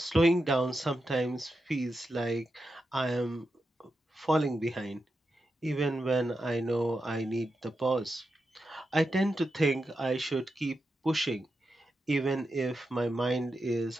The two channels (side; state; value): both; normal; correlation 0.88